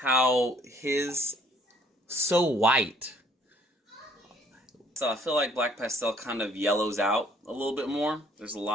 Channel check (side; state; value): both; normal; correlation 0.61